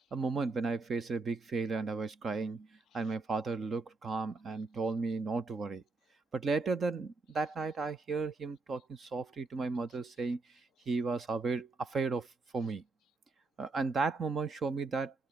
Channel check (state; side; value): quieter; left; 3.8 dB